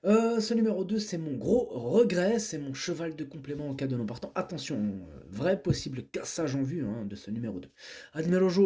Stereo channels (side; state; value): both; identical; correlation 1.00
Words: Ce numéro 2, c'est mon gros regret, c'est mon cheval de complément en cas de non partant. Attention, vrai possible cassage en vue hein, de ce numéro 2. Admiro